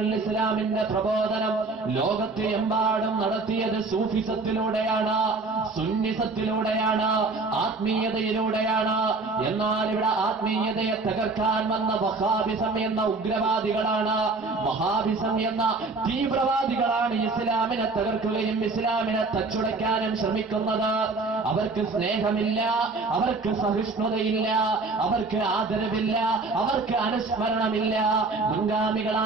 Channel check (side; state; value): left; quieter; 3.7 dB